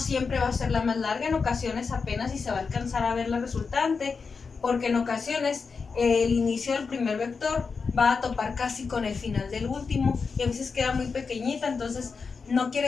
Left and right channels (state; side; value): quieter; right; 5.1 dB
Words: va a ser la más larga, en ocasiones apenas si se va a alcanzar a ver la resultante, porque en ocasiones el inicio del primer vector va a topar casi con el final del último y a veces queda muy pequeñita. Entonces no